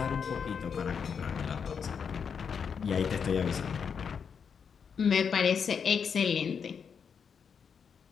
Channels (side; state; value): right; quieter; 6.6 dB